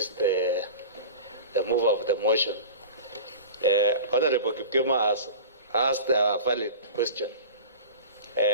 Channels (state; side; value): inverted; both; correlation -0.35